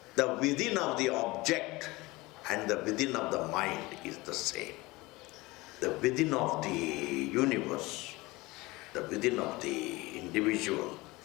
The within of the object and the within of the mind is the same. The within of the universe, the within of the individual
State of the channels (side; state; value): right; quieter; 21.7 dB